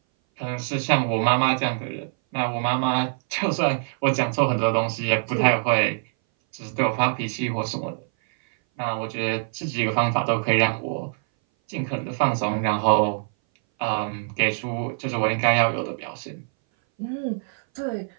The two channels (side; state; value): left; silent; 59 dB below the other